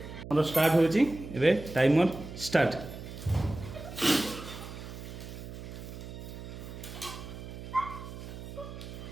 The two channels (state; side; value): noise; right; hum, 11 dB below the sound